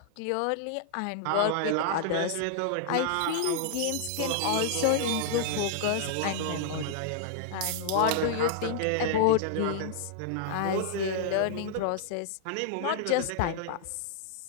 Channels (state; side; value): different; both; correlation -0.01